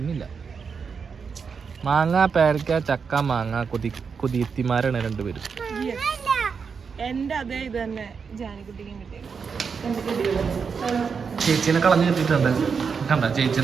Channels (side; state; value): left; quieter; 5.9 dB